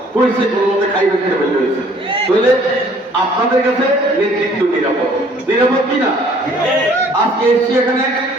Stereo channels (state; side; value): normal; both; correlation 0.57